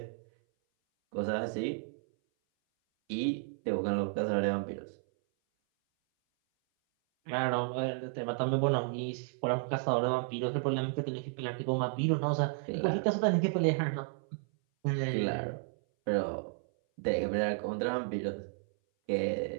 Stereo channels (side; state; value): left; silent; 56 dB below the other